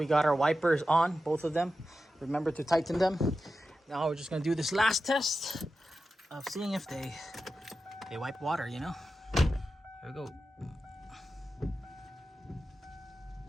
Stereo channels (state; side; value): normal; both; correlation 0.92